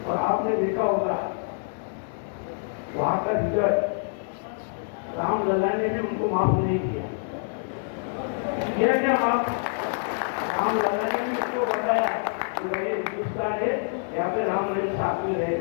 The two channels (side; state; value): right; silent; 61 dB below the other